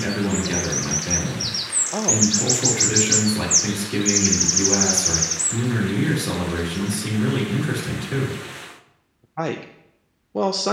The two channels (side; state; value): both; identical; correlation 1.00